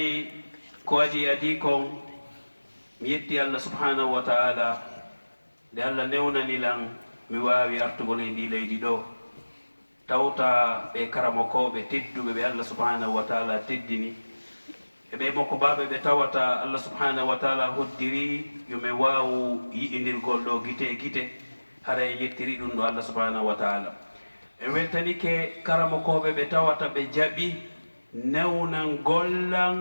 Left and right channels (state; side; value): inverted; both; correlation -1.00